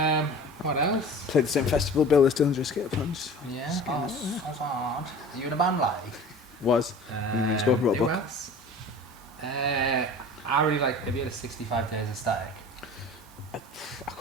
What else? Played the same festival bill as Dillinger Skate Punch. Yeah, that's hard. Are you in a band like? Was. You spoke about a who book. else? I really like. Have you had a 65 Days of Static? I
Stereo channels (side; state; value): both; normal; correlation 0.39